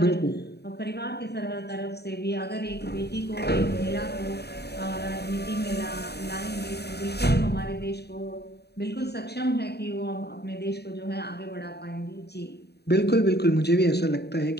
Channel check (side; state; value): right; late; 0.48 ms